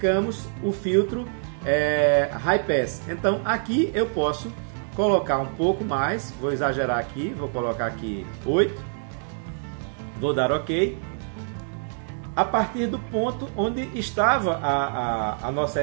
o filtro High Pass. Então aqui eu posso colocar um pouco mais, vou exagerar aqui, vou colocar aqui 8, vou dar OK a partir do ponto onde estava a nossa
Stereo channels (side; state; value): left; silent; digital silence